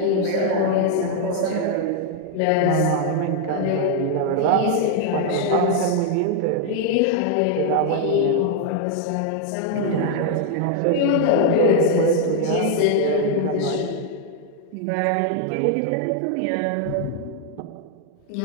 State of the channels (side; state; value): both; different; correlation 0.00